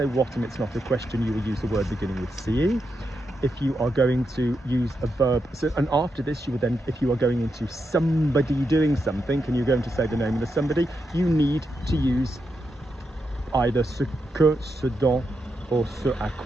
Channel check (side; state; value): both; normal; correlation 0.84